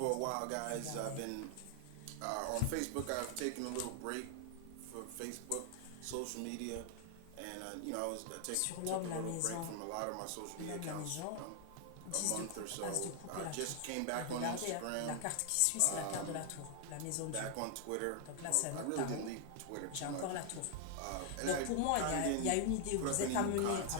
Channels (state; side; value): different; both; correlation 0.00